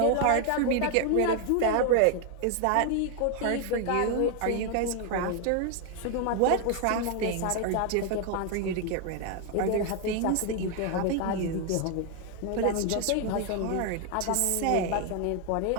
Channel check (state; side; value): different; both; correlation 0.00